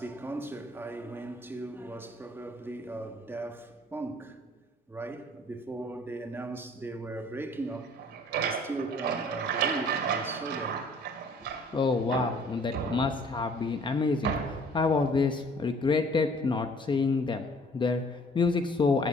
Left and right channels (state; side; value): normal; both; correlation 0.55